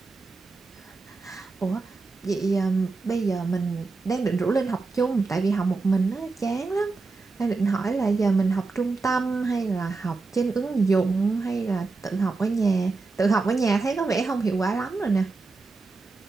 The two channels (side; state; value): left; quieter; 3.9 dB